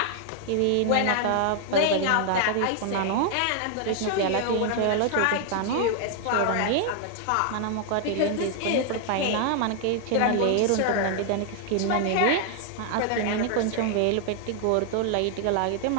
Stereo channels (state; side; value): different; both; correlation 0.00